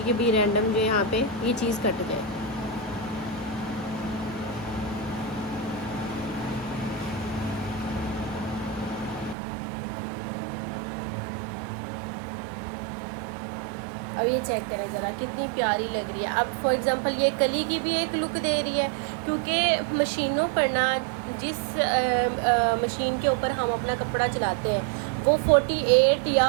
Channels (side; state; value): left; drops out; at 9.3 s